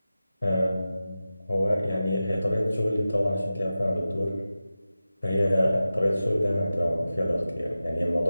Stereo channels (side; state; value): both; inverted; correlation -0.94